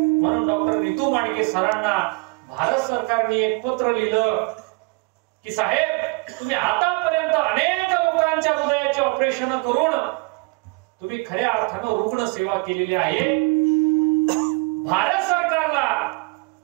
डॉक्टर नीतू मांडके सरांना भारत सरकारने एक पत्र लिहिलं की साहेब, तुम्ही आतापर्यंत अनेक लोकांच्या हृदयाची ऑपरेशन करून तुम्ही खऱ्या अर्थानं रुग्ण सेवा केलेली आहे. भारत सरकारला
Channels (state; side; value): quieter; left; 29.0 dB